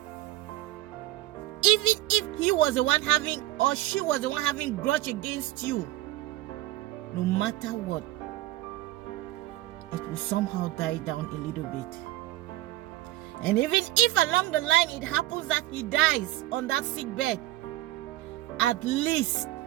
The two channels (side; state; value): left; quieter; 16.2 dB